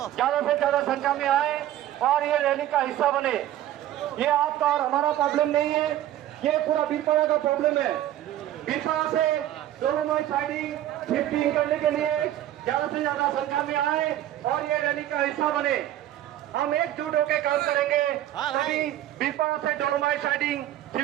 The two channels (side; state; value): left; quieter; 13.0 dB